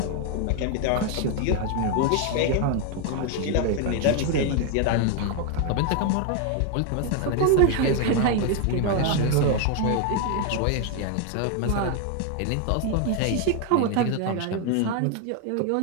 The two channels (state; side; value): different; both; correlation 0.01